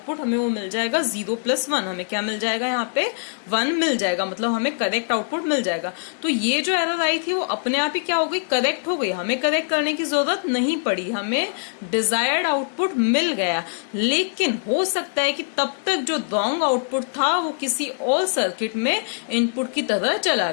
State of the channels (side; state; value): right; silent; 60 dB below the other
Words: हमें वो मिल जाएगा 0 प्लस 1। हमें क्या मिल जाएगा, यहाँ पे 1 मिल जाएगा, मतलब हमें करेक्ट आउटपुट मिल जाएगा। तो ये जो एरर आई थी वो अपने आप ही क्या हो गई, करेक्ट हो गई। हमें करेक्ट करने की जरूरत नहीं पड़ी, हमें डिजायर्ड आउटपुट मिल गया। लेकिन हो सकता है कि तब तक जो रॉन्ग आउटपुट था वो किसी और सर्किट में इनपुट की तरह चला